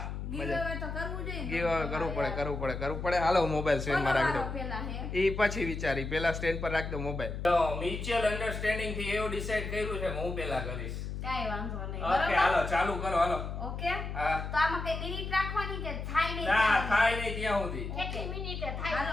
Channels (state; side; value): noise; left; hum, 5 dB below the sound